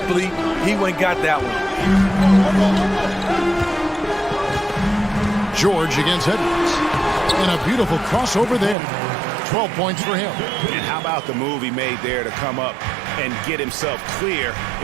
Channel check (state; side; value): drops out; left; at 8.8 s